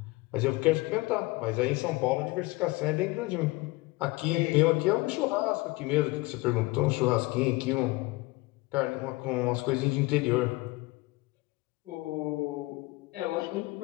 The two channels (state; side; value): quieter; right; 22.5 dB